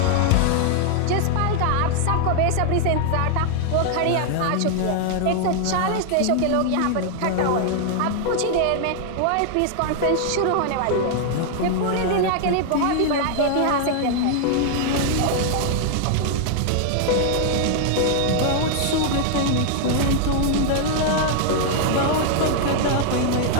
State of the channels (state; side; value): different; both; correlation 0.00